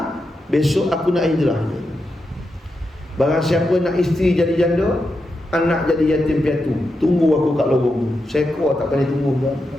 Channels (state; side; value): normal; both; correlation 0.87